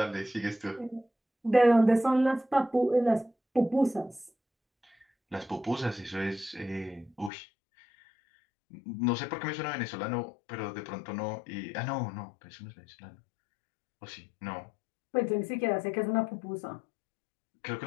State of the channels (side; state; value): right; drops out; at 7.3 s